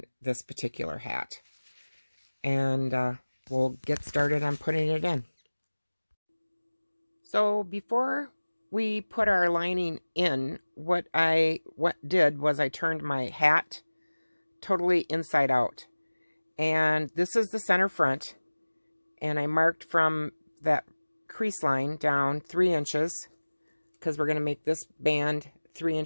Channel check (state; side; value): inverted; both; correlation -1.00